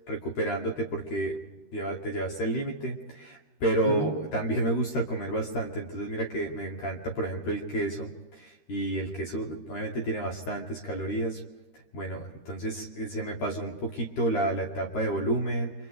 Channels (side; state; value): right; late; 13 ms